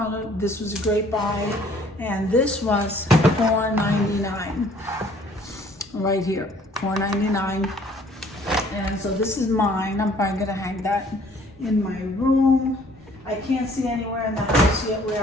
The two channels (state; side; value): normal; both; correlation 0.58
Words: This was a great buy, and this was $4.99 right here. $4.99. And so this is mine. I'm probably gonna hang that in my room. I can't see anywhere in the house yet